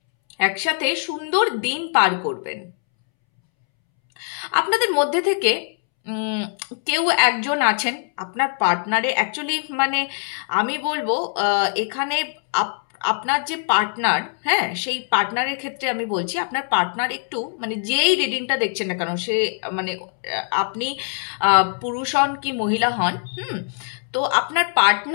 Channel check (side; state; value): right; silent; 64 dB below the other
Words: একসাথে সুন্দর দিন পার করবেন। আপনাদের মধ্যে থেকে কেউ একজন আছেন আপনার পার্টনারে, অ্যাকচুয়ালি মানে আমি বলবো এখানে আপনার যে পার্টনার, হ্যাঁ, সেই পার্টনারের ক্ষেত্রে আমি বলছি আপনার পার্টনার একটু মানে যেই রিডিংটা দেখছেন না কেন, সে মানে আপনি পুরুষ হন কি মহিলা হন, তো আপনার